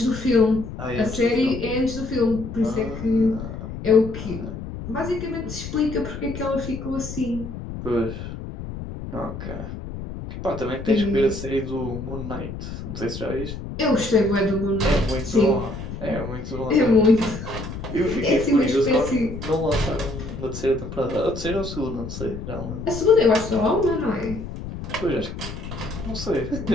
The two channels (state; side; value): noise; left; rumble, 9 dB below the sound